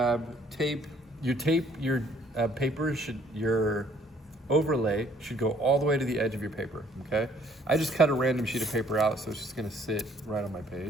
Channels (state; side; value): normal; both; correlation 0.62